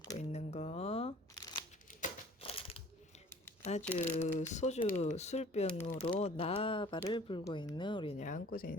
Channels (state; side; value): normal; both; correlation 0.50